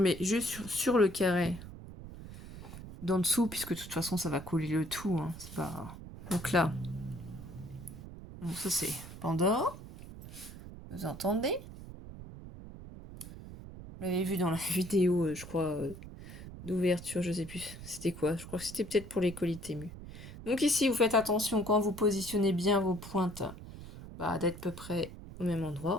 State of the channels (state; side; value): noise; right; rumble, 13 dB below the sound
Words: juste sur le carré d'en dessous, puisque de toute façon, ça va coller le tout, hein. C'est pas... Donc là, donc ça, c'est Pandore. Vous entendez? Vous l'avez vu dans la vidéo, je crois, d'ouverture, je sais plus. C'était quoi? Je crois que c'était peut-être pour les colis Temu. Donc ici, vous faites attention quand vous positionnez bien vos pointes, bah, d'être à peu près au même endroit.